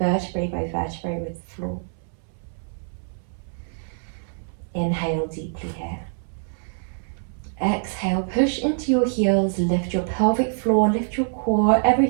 by vertebrae with the floor. Inhale deeply here. Exhale, push into your heels, lift your pelvic floor, lift your core,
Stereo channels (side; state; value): left; silent; 62 dB below the other